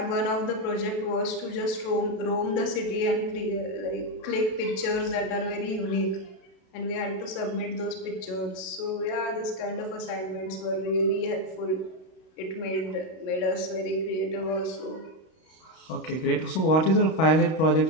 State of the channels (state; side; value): late; right; 32 ms